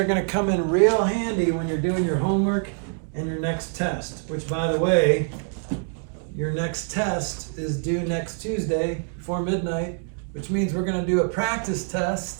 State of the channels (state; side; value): silent; left; 55 dB below the other